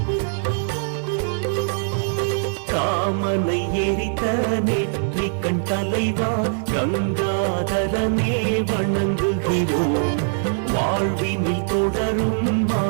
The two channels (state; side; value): silent; left; 64 dB below the other